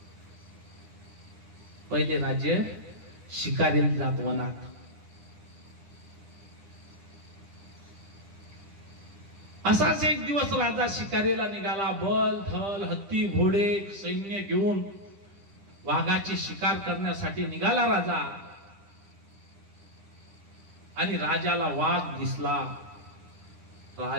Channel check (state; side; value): late; left; 10 ms